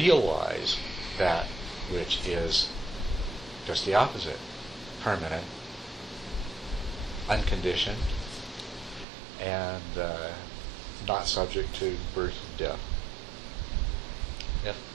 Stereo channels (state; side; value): drops out; left; at 9.1 s